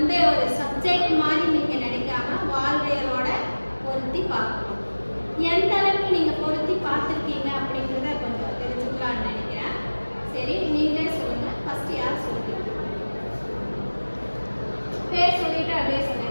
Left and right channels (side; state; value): both; inverted; correlation -1.00